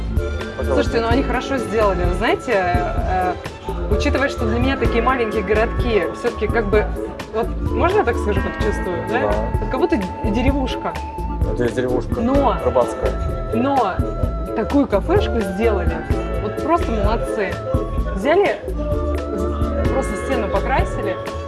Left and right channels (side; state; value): both; identical; correlation 1.00